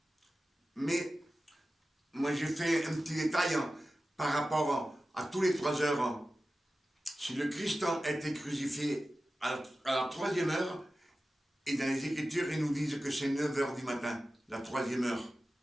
Mais moi, j'ai fait un petit détail par rapport à tous les 3 heures. Si le Christ a été crucifié à la troisième heure, et dans les Écritures, ils nous disent que c'est 9 heures du matin, la troisième heure.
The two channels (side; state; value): both; normal; correlation 0.94